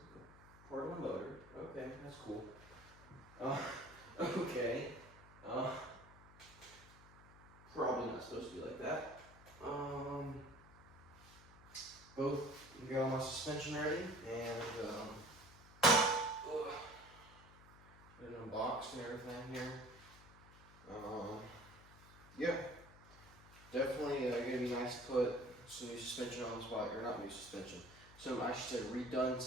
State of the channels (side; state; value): left; noise; hum, 21 dB below the sound